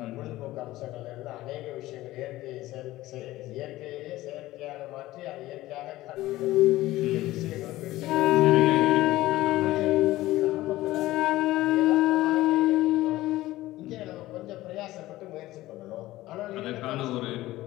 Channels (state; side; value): quieter; right; 16.8 dB